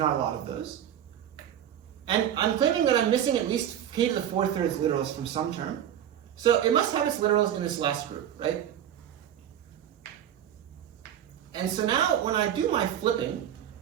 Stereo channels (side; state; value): left; quieter; 10.3 dB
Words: a lot of those. And I'm claiming that I'm missing at least k to the 4/3 literals from some term. So it must have its literals in this last group, right? And so now when I do my flipping,